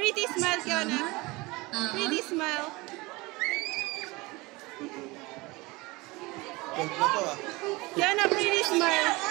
smile, Kiana. Pretty smile. Kiana, pretty smile.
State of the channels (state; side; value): quieter; left; 23.2 dB